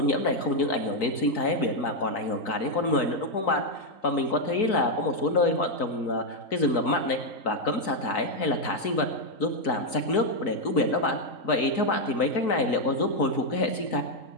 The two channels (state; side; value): late; right; 4.6 ms